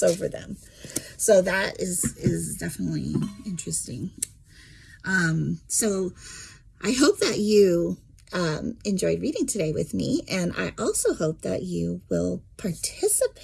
over them. So that is definitely interesting. So I hope that you enjoyed reading today with me. And I also hope that you will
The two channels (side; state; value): both; identical; correlation 1.00